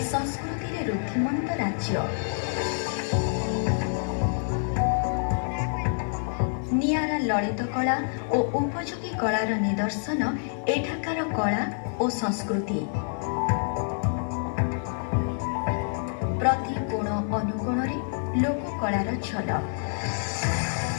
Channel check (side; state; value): right; silent; 60 dB below the other